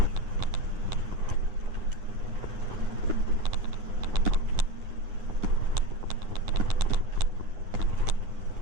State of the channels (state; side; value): late; left; 9.8 ms